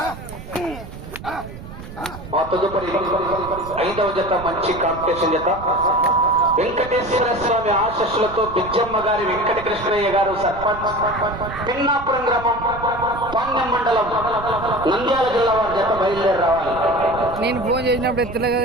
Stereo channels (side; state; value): right; noise; rumble, 13 dB below the sound